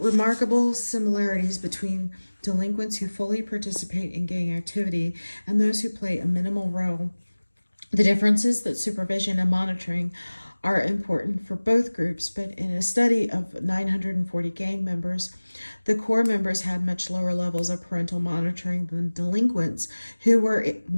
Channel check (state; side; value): inverted; both; correlation -1.00